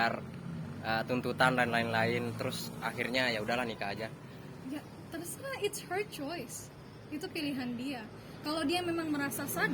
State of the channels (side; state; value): both; identical; correlation 1.00